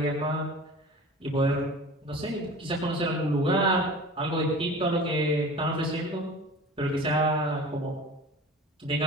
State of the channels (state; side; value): normal; both; correlation 0.39